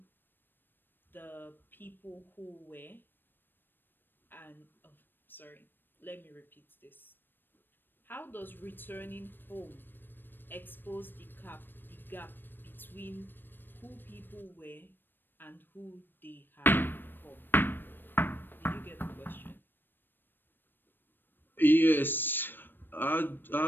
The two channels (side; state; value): right; late; 0.095 ms